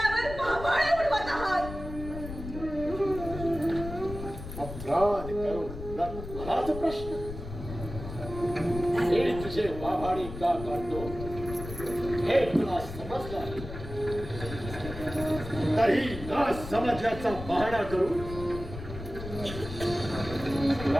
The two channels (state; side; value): noise; left; rumble, 10 dB below the sound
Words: भावाळे उडवत आहात. अपराध करून मलाच प्रश्न. हे तुझे वाभाडी का काढतो हे तुला समजलं आहे. तरी न समजल्याचा बहाणा करून